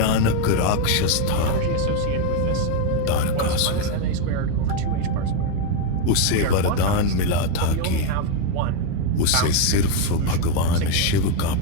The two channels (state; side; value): different; both; correlation 0.02